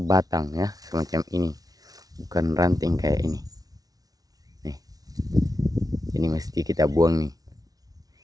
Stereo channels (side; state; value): left; late; 0.18 ms